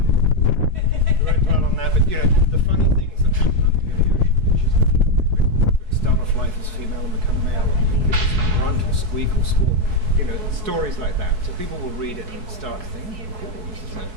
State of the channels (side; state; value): left; late; 4.6 ms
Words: We won't dwell on that, but the funny things that happen up here in the ocean, fishes that start off life as female and become male, or fishes grunt or squeak or squawk, stories like that. So people will read it and start to think,